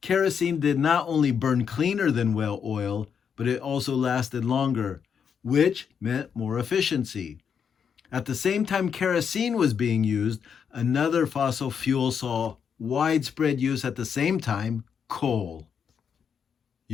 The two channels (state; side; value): quieter; right; 7.1 dB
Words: Kerosene did not only burn cleaner than whale oil, but it also lasted longer, which meant more efficiency. At the same time kerosene was being used, another fossil fuel saw widespread use at the same time: coal.